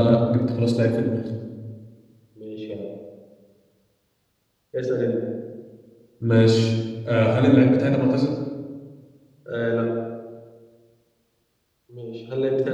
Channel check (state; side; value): identical; both; correlation 1.00